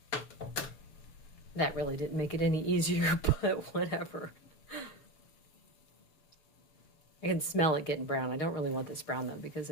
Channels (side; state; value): right; late; 6.5 ms